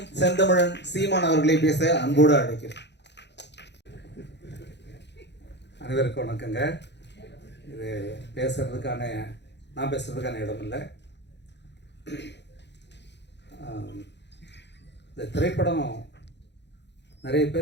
செந்தமிழன் சீமான் அவர்களை பேச அன்போடு அழைக்கிறேன். அனைவருக்கும் வணக்கங்க. இது நான் பேசுறதுக்கான இடம் இல்லை. இந்த திரைப்படம் நிறைய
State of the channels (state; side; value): late; right; 0.50 ms